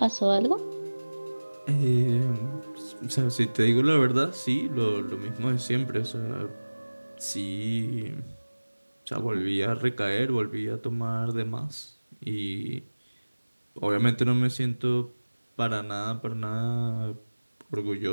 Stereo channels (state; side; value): inverted; both; correlation -1.00